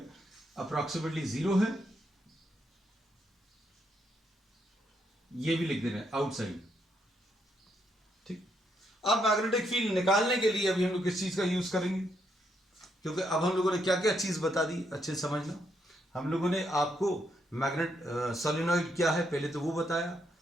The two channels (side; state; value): both; normal; correlation 0.77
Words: अप्रोक्सीमेटली जीरो है. ये भी लिख दे रहे हैं आउटसाइड. ठीक. अब मैग्नेटिक फील्ड निकालने के लिए अभी हम लोग किस चीज का यूज करेंगे, क्योंकि अब हम लोगों ने क्या क्या चीज बता दी अच्छे से समझना. हम लोगों ने आपको मैग्नेट सोलेनॉइड क्या है पहले तो वो बताया